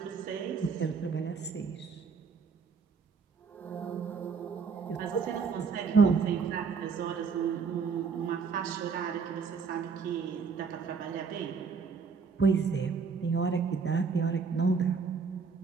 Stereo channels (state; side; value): quieter; left; 5.4 dB